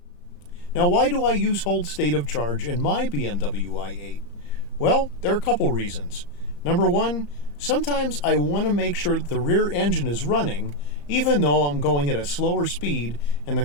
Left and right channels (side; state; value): right; late; 34 ms